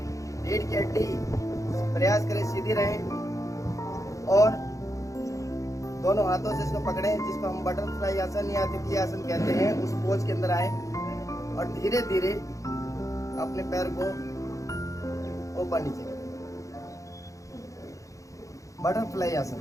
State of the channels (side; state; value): right; late; 0.16 ms